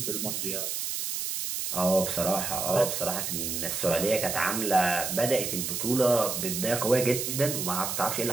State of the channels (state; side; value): noise; right; hiss, 3 dB below the sound